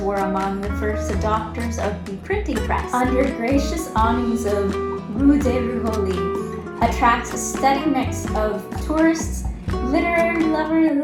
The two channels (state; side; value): identical; both; correlation 1.00